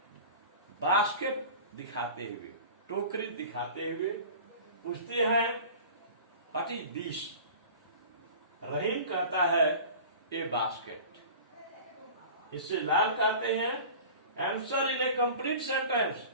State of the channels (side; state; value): both; inverted; correlation -0.39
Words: basket दिखाते हुए, टोकरी दिखाते हुए पूछते हैं व्हाट इज दिस। रहीम कहता है ए बास्केट। इससे लाल कहते हैं answer in A complete sentence